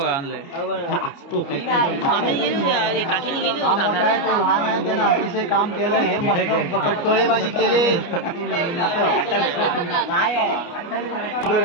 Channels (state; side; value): late; right; 29 ms